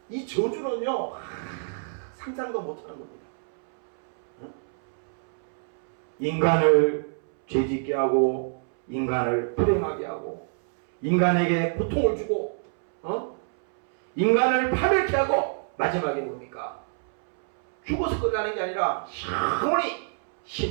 이 저주는요 상상도 못하는 겁니다. 인간을 죄짓게 하고 인간을 불행하게 하고 인간에게 고통을 주고 인간을 파멸케 하고 마지막에 뭡니까? 죽어서 끝나는 게 아니라 영원히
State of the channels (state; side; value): silent; left; 61 dB below the other